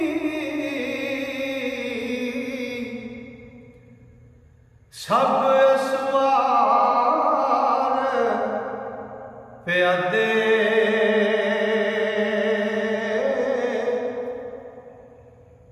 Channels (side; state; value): both; identical; correlation 1.00